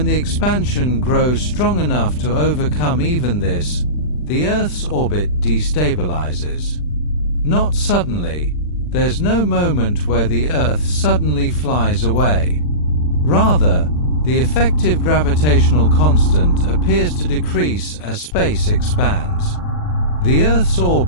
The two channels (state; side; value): late; right; 40 ms